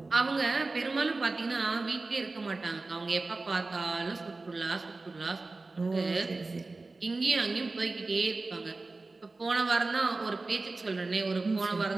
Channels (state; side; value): quieter; left; 3.5 dB